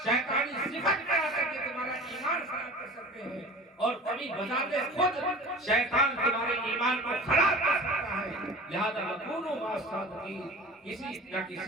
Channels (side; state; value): both; normal; correlation 0.38